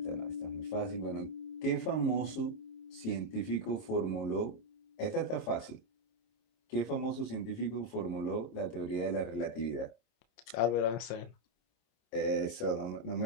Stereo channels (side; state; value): right; late; 26 ms